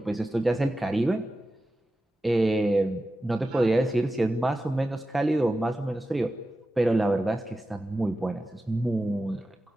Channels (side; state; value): both; normal; correlation 0.93